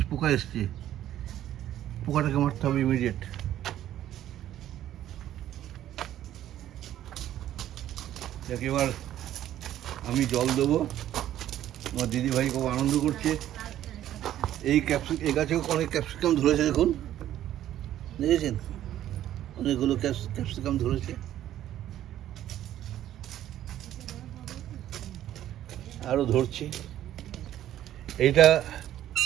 এসছে, পোকাটাকে মারতে হবে ইমিডিয়েট। যাকে এবার আমি জল দেবো। আমার দিদিভাই খুব আনন্দ করছে। এই গাছেও অনেক ক্যাপসিকাম ধরেছে, দেখুন, দেখেছেন অনেকগুলো ক্যাপসিকাম ধরেছে। আরো ধরছে। এইটা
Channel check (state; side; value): quieter; left; 12.2 dB